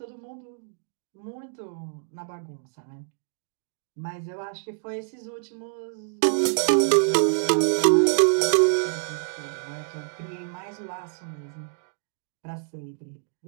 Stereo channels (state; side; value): silent; left; digital silence